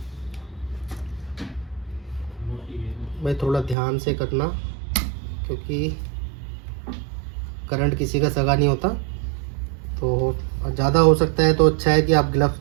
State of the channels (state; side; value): drops out; left; at 3.8 s